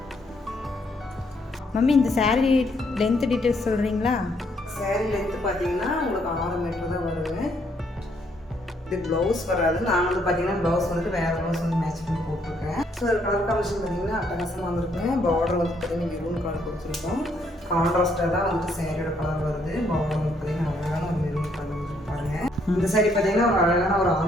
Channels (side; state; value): both; normal; correlation 0.70